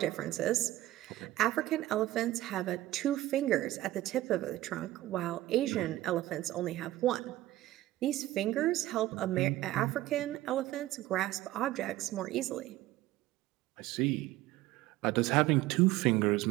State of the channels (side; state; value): left; quieter; 15.9 dB